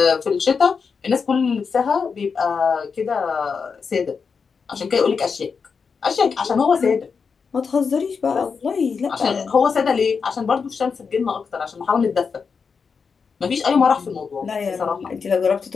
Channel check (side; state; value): right; quieter; 5.6 dB